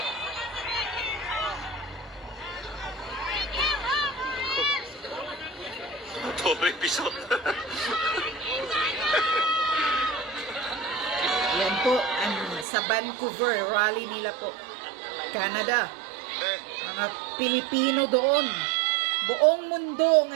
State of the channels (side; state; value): left; drops out; at 12.7 s